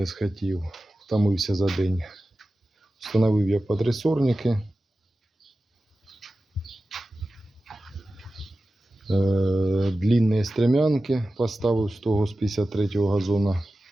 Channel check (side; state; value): both; normal; correlation 0.94